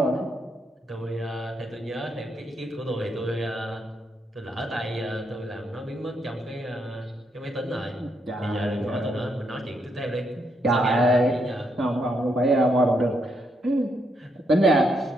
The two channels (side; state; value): both; normal; correlation 0.78